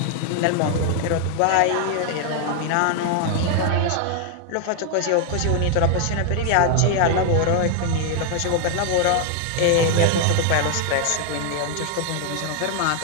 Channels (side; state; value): both; different; correlation 0.00